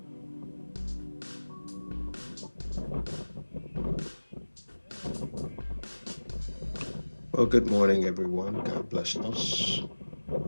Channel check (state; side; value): inverted; both; correlation -1.00